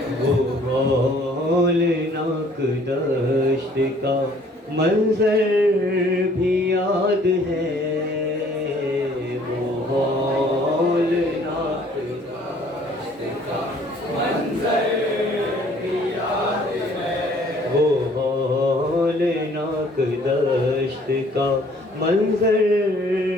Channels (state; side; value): normal; both; correlation 0.58